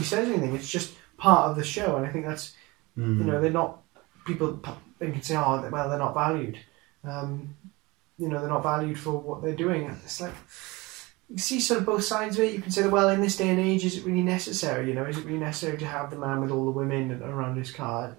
says anything. It's just part of the show, and I think that's, you know, they're not. People think and say, oh, well, they're not valued. You know, they're not valued for what they're doing. And it's like, you see sort of both sides of it. You can say that, well, in this day and age, is it really necessary? You know, is it really necessary to have the man with all the women around his car?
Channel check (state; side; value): quieter; left; 23.4 dB